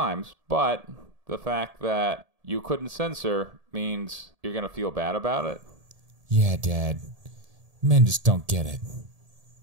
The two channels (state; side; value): late; left; 1.7 ms